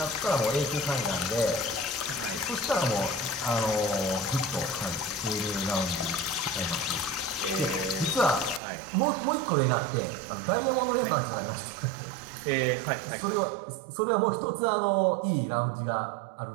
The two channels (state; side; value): drops out; left; at 8.6 s